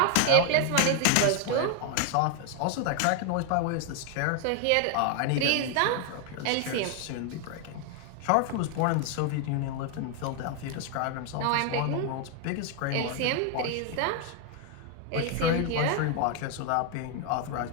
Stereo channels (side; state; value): both; different; correlation 0.01